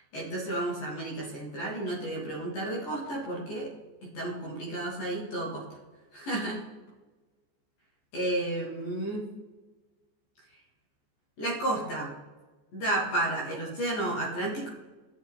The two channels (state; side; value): late; right; 14 ms